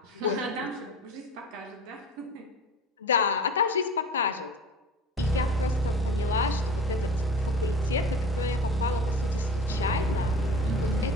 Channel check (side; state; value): both; normal; correlation 0.37